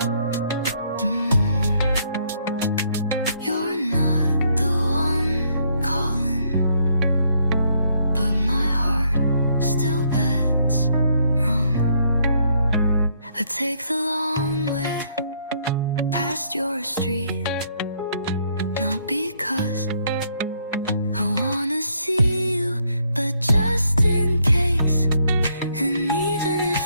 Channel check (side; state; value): both; inverted; correlation -0.70